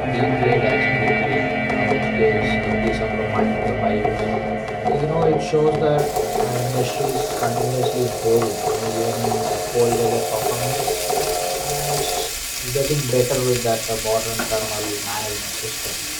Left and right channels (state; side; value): identical; both; correlation 1.00